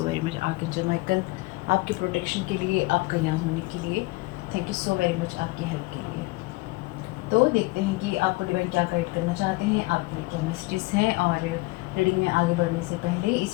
very much archangel Michael, आपके प्रोटेक्शन के लिए, आपका यहाँ होने के लिए। Thank you so very much आपकी हेल्प के लिए। तो देखते हैं कि आपको डिवाइन क्या गाइड करना चाहते हैं, आपके लिए क्या मैसेजेस हैं। और रीडिंग में आगे बढ़ने से पहले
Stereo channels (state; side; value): quieter; right; 23.0 dB